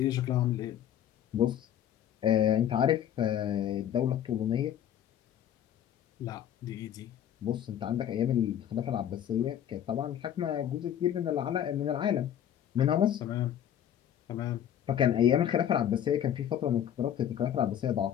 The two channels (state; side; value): quieter; right; 10.2 dB